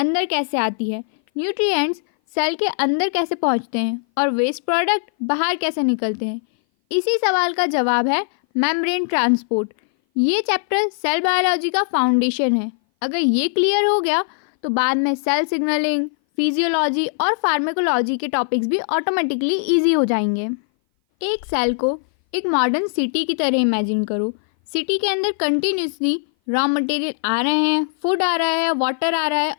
कैसे आती है, न्यूट्रिएंट्स सेल के अंदर कैसे पहुंचते हैं और वेस्ट प्रोडक्ट बाहर कैसे निकलते हैं। इसी सवाल का जवाब है मेम्ब्रेन ट्रांसपोर्ट। ये चैप्टर सेल बायोलॉजी का फाउंडेशन है। अगर ये क्लियर हो गया तो बाद में सेल सिग्नलिंग, फिजियोलॉजी और फार्माकोलॉजी के टॉपिक्स भी ऑटोमेटिकली इजी हो जाएंगे। एक सेल को एक मॉडर्न सिटी की तरह इमेजिन करो। सिटी के अंदर कंटिन्यूसली रॉ मटेरियल आ रहे हैं, फूड आ रहा है, वाटर आ रहा है,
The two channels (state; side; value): silent; right; 58 dB below the other